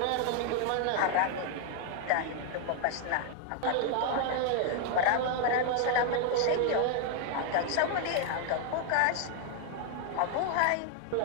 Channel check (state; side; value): different; both; correlation 0.00